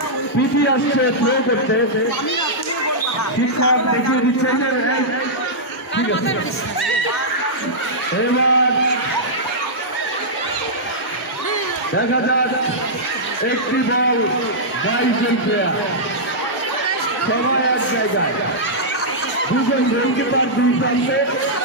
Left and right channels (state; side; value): normal; both; correlation -0.11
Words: পিটি আসছে থ্রো করতে। শিক্ষক দেখিয়ে দিচ্ছে যে ঠিক আছে। এবার দেখা যাক একটি বল 22 জন প্লেয়ার সবাই এক জায়গায়, দুজন গোলকিপার দুই প্রান্তে,